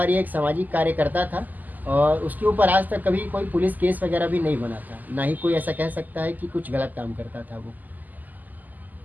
एक सामाजिक कार्यकर्ता था, और उसके ऊपर आज तक कभी कोई पुलिस केस वगैरह भी नहीं बना था, ना ही कोई ऐसा कह सकता है कि कुछ गलत काम करता था वो।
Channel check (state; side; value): late; left; 0.083 ms